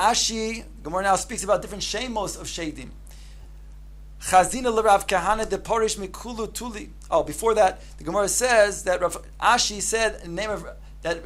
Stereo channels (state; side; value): identical; both; correlation 1.00